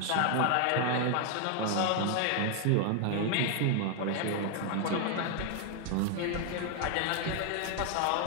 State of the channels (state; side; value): different; both; correlation 0.00